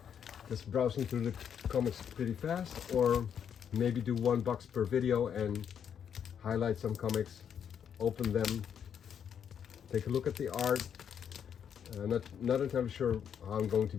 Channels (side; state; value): right; quieter; 8.2 dB